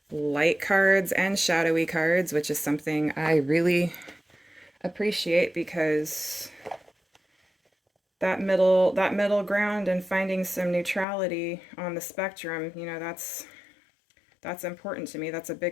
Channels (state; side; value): drops out; right; at 11.1 s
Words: light cards and shadowy cards, which is something I really appreciate, because that middle ground and finding some neutrality on the spectrum, you know, that's important to me. That's a